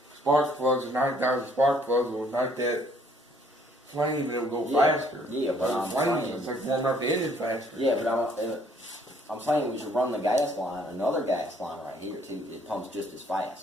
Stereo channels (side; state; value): both; normal; correlation 0.63